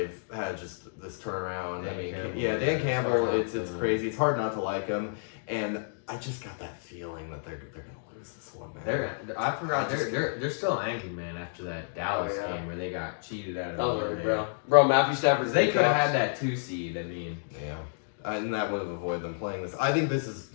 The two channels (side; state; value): right; silent; digital silence